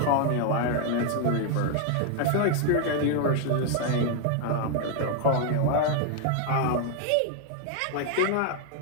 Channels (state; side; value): different; both; correlation 0.00